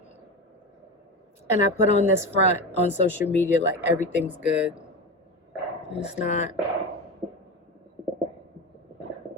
And I put on this front on social media like everything's good. It's not.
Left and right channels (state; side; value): normal; both; correlation 0.22